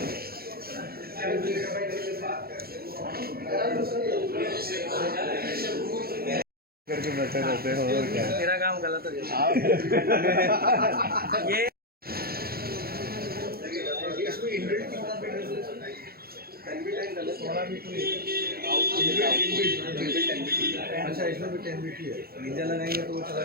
करके बैठे रहते हो और क्या? मेरा काम गलत हो गया। ये इसमें इनबिल्ट करना पड़ेगा सर। एनबीटी डाला 16 बिट अच्छा, इसमें भी 10 बिट ही है। निंजा लगाएंगे तो वो चला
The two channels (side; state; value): left; late; 0.44 ms